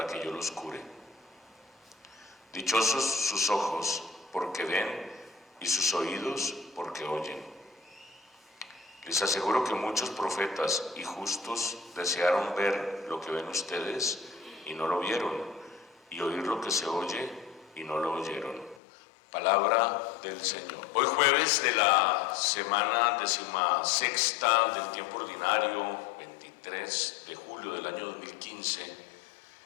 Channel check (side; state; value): right; drops out; at 18.8 s